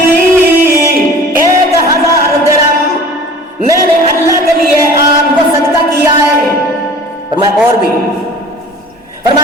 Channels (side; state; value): both; normal; correlation 0.44